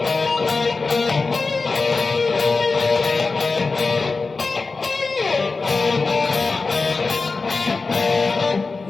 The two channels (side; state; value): right; quieter; 4.1 dB